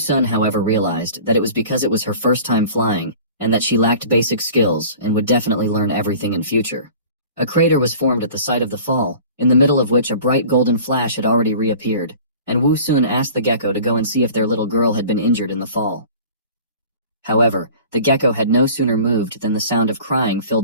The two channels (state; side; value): inverted; both; correlation -0.44